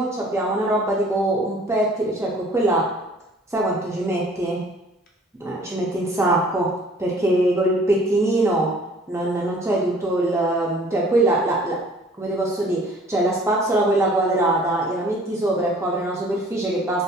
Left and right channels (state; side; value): normal; both; correlation 0.53